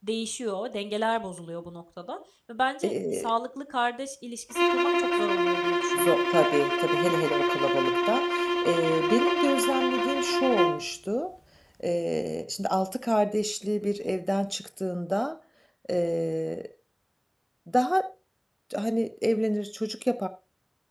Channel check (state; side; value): identical; both; correlation 1.00